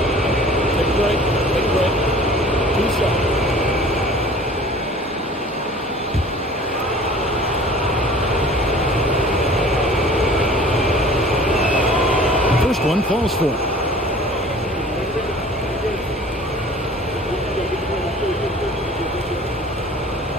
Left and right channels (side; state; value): both; normal; correlation 0.47